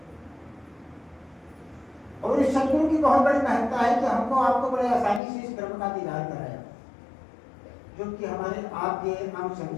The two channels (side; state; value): right; drops out; at 5.2 s